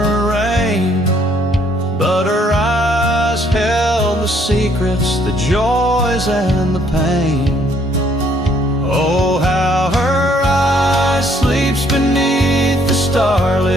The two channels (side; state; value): both; normal; correlation 0.65